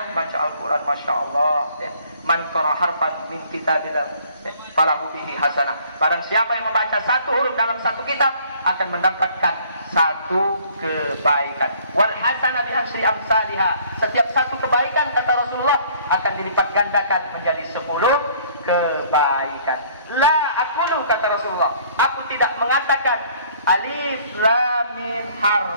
Al-Quran, Masya Allah ya. Man qara harfan min kitabillah ya, falahu bihi hasanah. Barang siapa yang membaca satu huruf dalam satu kitab akan mendapatkan satu kebaikan. Wal hasanah bi asyri amsalihah. Setiap satu kebaikan, kata Rasulullah, akan dilipat gandakan menjadi 10 kebaikan. La aqulu, kata Rasulullah, aku tidak mengatakan alif lam mim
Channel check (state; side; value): inverted; both; correlation -0.57